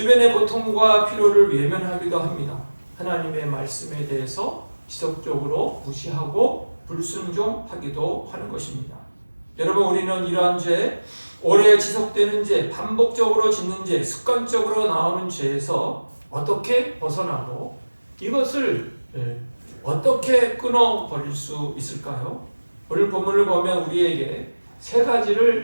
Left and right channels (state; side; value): inverted; both; correlation -1.00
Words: 고통과 피로를 외면하기도 합니다. 하나님의 말씀에 대해서 지속적으로 무시하고 불순종하기도 하는 것입니다. 여러분, 우리는 이러한 죄, 오래 지속되는 죄, 반복적으로 짓는 죄, 습관적으로 나오는 죄에서 어떻게 벗어나고 이것을 어떻게 끊어버릴 수 있을까요? 오늘 본문을 보면 우리에게 세